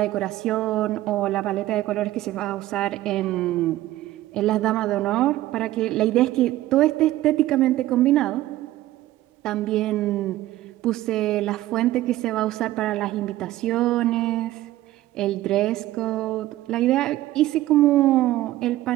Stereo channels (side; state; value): left; quieter; 15.5 dB